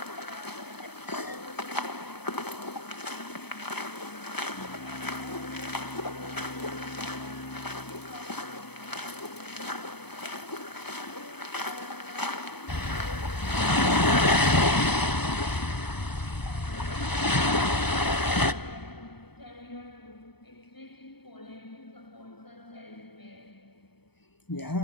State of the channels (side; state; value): right; late; 0.98 ms